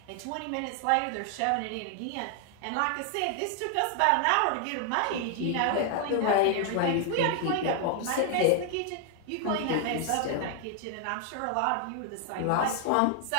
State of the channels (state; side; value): different; both; correlation 0.00